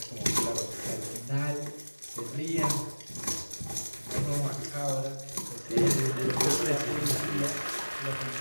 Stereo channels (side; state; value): both; inverted; correlation -1.00